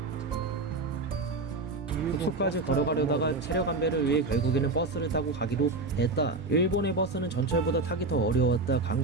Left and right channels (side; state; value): left; quieter; 3.3 dB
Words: 숙소까지 걸어가려다가 체력 안배를 위해 결국에는 버스를 타고 가기로 했다. 일본의 버스는 전철보다 타기 더 어려웠다.